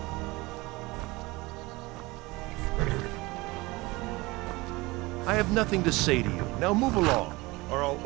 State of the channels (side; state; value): left; quieter; 22.3 dB